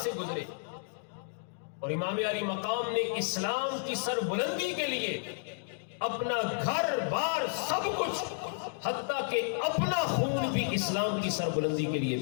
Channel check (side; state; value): right; silent; digital silence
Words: گزرے، اور امام علی مقام نے اسلام کی سربلندی کے لیے اپنا گھر بار سب کچھ، حتیٰ کہ اپنا خون بھی اسلام کی سربلندی کے لیے